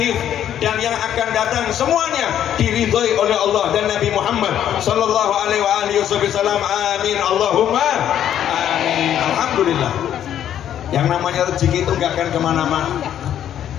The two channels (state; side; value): quieter; right; 10.4 dB